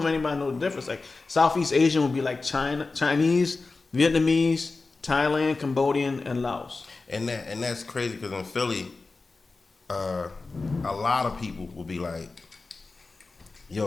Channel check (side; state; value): right; quieter; 3.8 dB